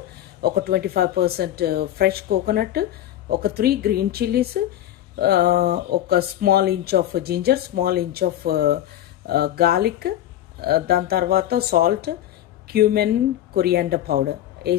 ఒక 25% ఫ్రెష్ కోకోనట్, ఒక 3 గ్రీన్ చిల్లీస్, ఒక small inch of ginger, small inch of garlic. దాని తర్వాత సాల్ట్, క్యూమెన్, కొరియాండర్ పౌడర్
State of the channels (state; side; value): quieter; right; 12.4 dB